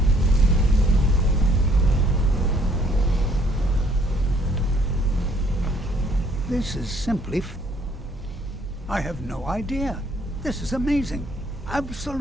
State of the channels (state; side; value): normal; both; correlation 0.63